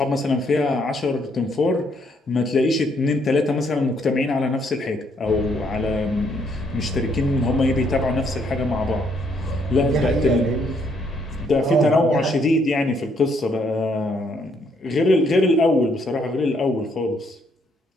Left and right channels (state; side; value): normal; both; correlation 0.70